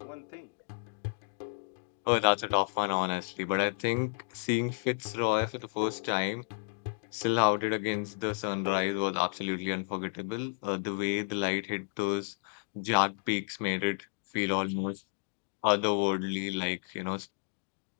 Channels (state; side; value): silent; right; digital silence